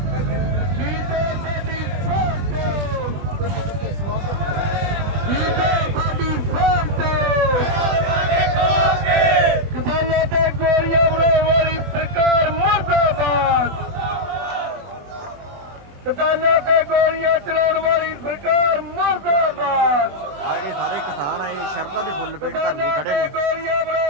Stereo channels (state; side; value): late; left; 21 ms